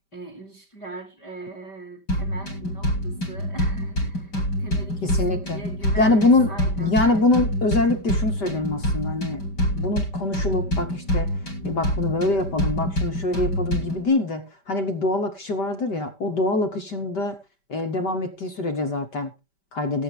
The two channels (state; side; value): late; right; 5.1 ms